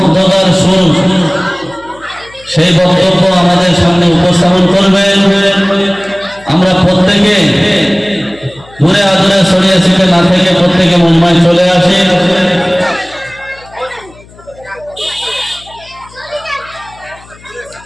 সুর, সেই বক্তব্য আমাদের সামনে উপস্থাপন করবেন। আমরা প্রত্যেকে দূরে আদূরে ছড়িয়ে ছিটে না থেকে প্রত্যেকে মুম্বাই চলে আসি।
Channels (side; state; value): left; noise; hum, 24 dB below the sound